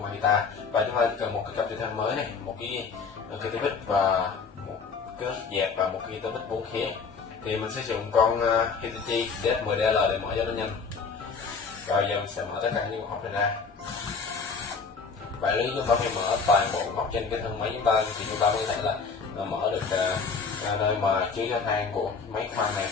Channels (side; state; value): right; quieter; 5.1 dB